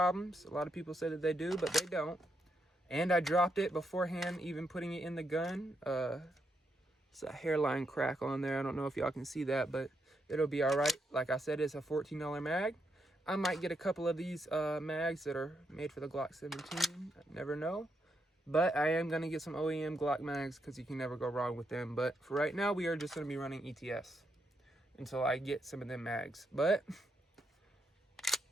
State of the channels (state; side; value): normal; both; correlation 0.80